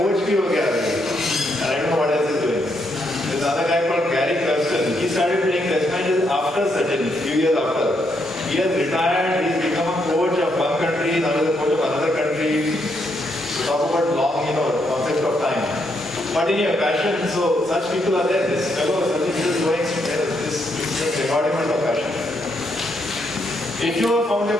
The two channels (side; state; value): both; normal; correlation 0.77